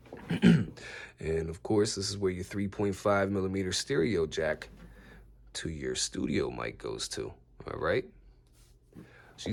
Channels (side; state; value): both; identical; correlation 1.00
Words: And, of course, this is where your 3.5 millimeter stereo jack to your studio mic goes to, all right?